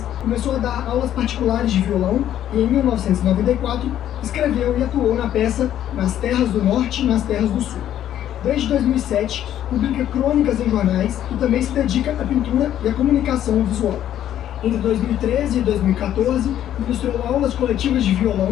começou a dar aulas particulares de violão e em 1994 escreveu e atuou na peça Nas Terras do Norte e Nas Terras do Sul. Desde 2007, publica crônicas em jornais e também se dedica à pintura e à comunicação visual. Entre 2013 e 2014, ministrou aulas coletivas de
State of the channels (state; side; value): quieter; right; 11.3 dB